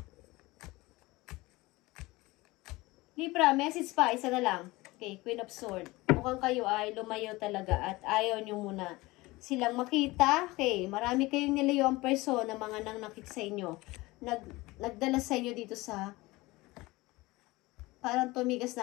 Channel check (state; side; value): quieter; right; 21.1 dB